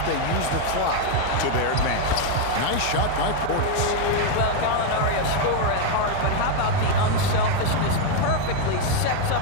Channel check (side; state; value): both; different; correlation 0.01